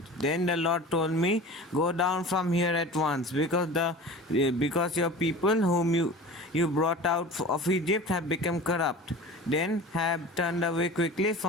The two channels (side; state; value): both; normal; correlation 0.37